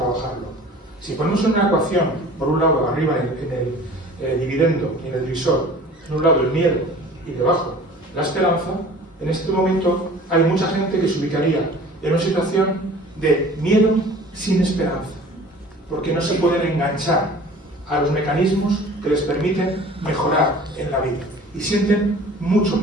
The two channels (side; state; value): both; normal; correlation 0.45